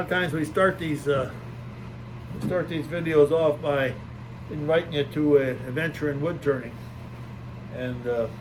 of times we start these videos off by inviting you to an adventure in wood turning, and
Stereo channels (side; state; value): both; identical; correlation 1.00